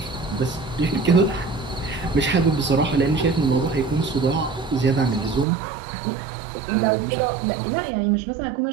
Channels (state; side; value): drops out; left; at 5.5 s